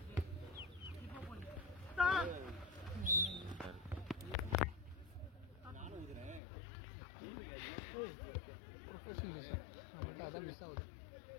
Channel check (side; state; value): right; drops out; at 6.4 s